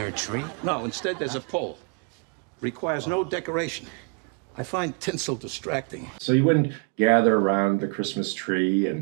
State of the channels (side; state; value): left; quieter; 33.3 dB